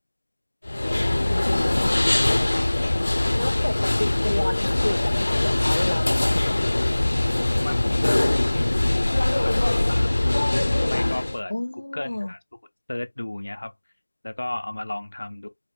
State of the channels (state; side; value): inverted; both; correlation -1.00